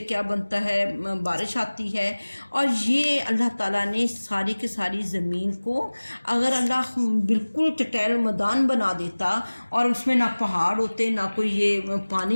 کیا بنتا ہے، بارش آتی ہے۔ اور یہ اللہ تعالیٰ نے ساری کی ساری زمین کو اگر اللہ بالکل چٹیل میدان بنا دیتا اور اس میں نہ پہاڑ ہوتے نہ کوئی یہ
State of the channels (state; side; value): inverted; both; correlation -1.00